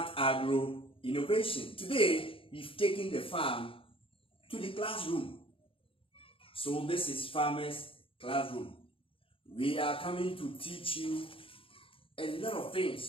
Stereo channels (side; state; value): right; late; 0.26 ms